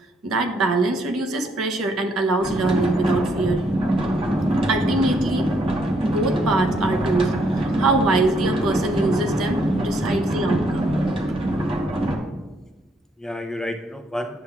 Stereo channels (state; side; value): normal; both; correlation 0.71